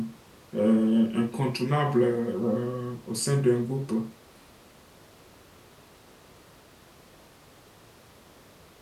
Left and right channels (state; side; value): identical; both; correlation 1.00